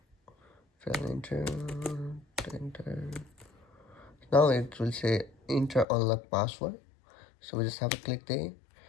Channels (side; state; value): right; drops out; at 5.9 s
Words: Fail, enter. Now it will say enter unlock password, so we just have to click there.